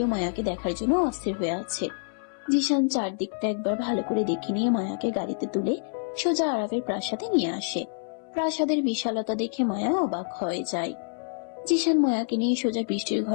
মায়াকে দেখার জন্য অস্থির হয়ে আছে। জিশান চারদিকটা একবার ভালো করে দেখে নিয়ে মায়াকে গাড়িতে তুলে সোজা আরবের প্রাসাদে নিয়ে আসে। প্রাসাদের বিশালতা দেখে মায়া অবাক হয়ে যায়। জিশান মায়াকে নিয়ে সোজা বৃষ্টির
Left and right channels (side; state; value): right; silent; 60 dB below the other